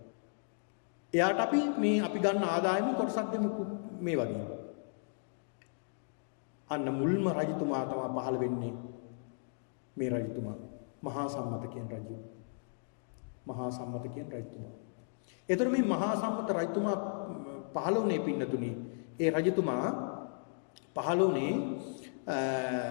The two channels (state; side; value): silent; right; digital silence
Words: එයාට අපි ගන්න ආදායම කොටසක් දෙමු මේ වගේ. අන්න මුල්ම රජතුමා තමයි පහළ වෙන්නේ. මේ රජතුමා මහා සම්මත කියන රජු. මහා සම්මත කියන රජතුමා. ඒතර මේ මහා සම්මත රජතුමා පහළ වුණේ පින්නතුනි. ඒ රජතුමා පහළ වුණේ